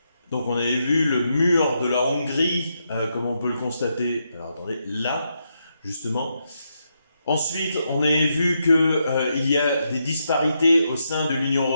Donc on avait vu le mur de la Hongrie, comme on peut le constater, alors attendez, là, justement. Ensuite, on avait vu qu'il y a des disparités au sein de l'Union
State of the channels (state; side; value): inverted; both; correlation -0.82